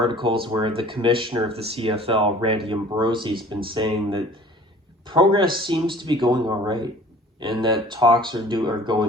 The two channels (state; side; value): normal; both; correlation 0.48